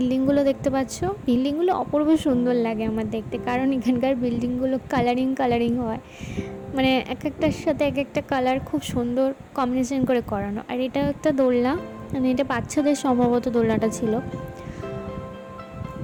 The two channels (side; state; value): both; identical; correlation 1.00